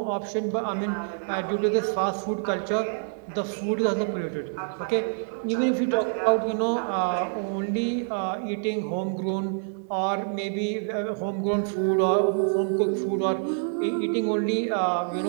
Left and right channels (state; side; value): silent; left; 59 dB below the other